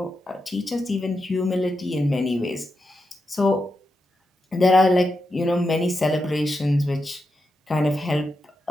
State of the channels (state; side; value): normal; both; correlation 0.87